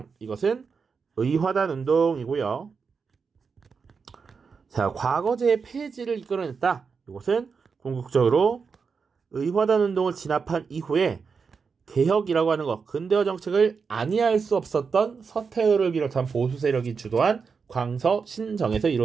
이것은 의화단 운동이고요. 자, 과거제의 폐지를 이끌어냈다. 이것은 궁극적으로 의화단 운동을 진압한 이후에 개혁이라고 하는 것, 근대화 정책을 안이할 수 없었던 서태후를 비롯한 보수 세력이 주도한 광서 신정에서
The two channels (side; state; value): left; quieter; 5.5 dB